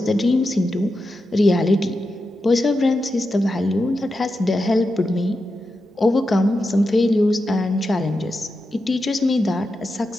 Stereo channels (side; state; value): both; normal; correlation 0.89